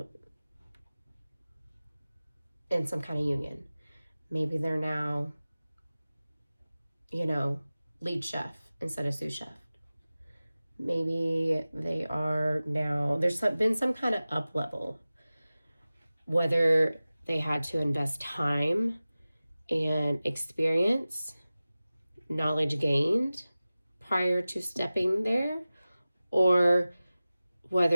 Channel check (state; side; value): inverted; both; correlation -0.97